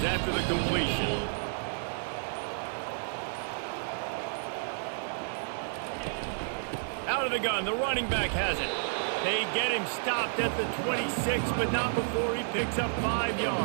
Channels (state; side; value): silent; left; 57 dB below the other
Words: after the completion. Out of the gun, the running back has it. They get him stopped at the 26, but not before he picks up 5